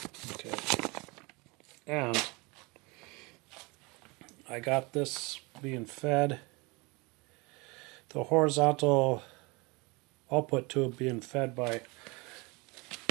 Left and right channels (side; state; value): left; quieter; 26.8 dB